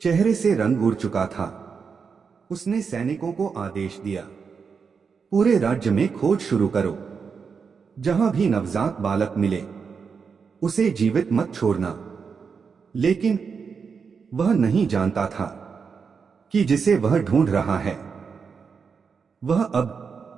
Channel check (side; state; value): left; quieter; 5.7 dB